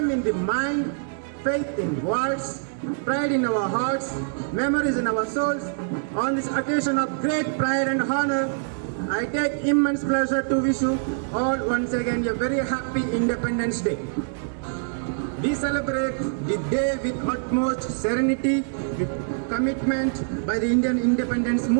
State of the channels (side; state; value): left; silent; digital silence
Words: in the mind, faith in words, pride in our hearts, memories in our souls. On this occasion of great pride and honor, I take immense pleasure to wish you all once again a very happy Independence Day. We celebrate the day with utmost serenity, with commitment by the Indian independence